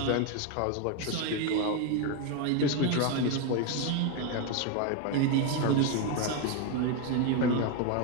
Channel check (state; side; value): different; both; correlation 0.02